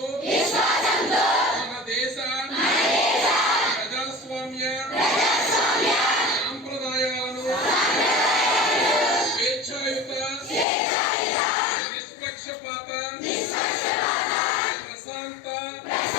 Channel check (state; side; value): drops out; right; at 10.7 s